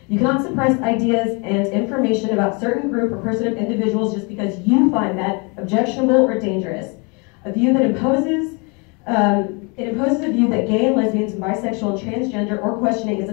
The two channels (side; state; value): right; quieter; 31.7 dB